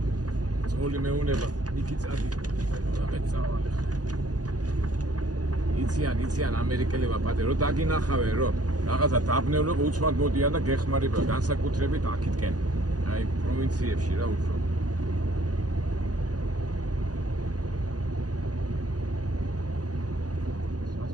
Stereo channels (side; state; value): left; late; 0.68 ms